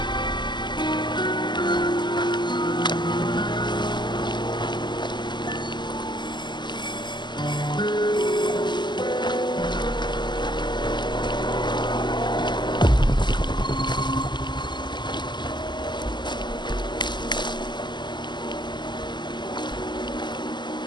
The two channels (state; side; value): late; right; 0.21 ms